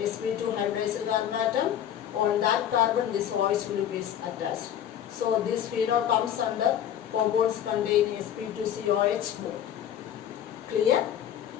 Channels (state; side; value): quieter; right; 10.1 dB